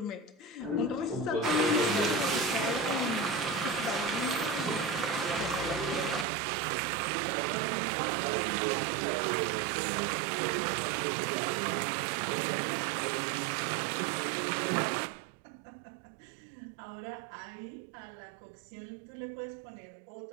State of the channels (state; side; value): drops out; left; at 6.2 s